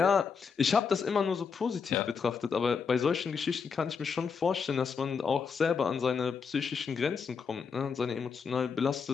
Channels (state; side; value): quieter; right; 5.8 dB